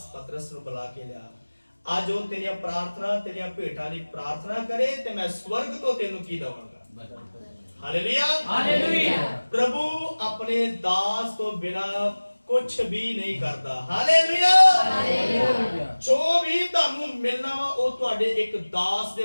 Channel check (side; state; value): both; inverted; correlation -1.00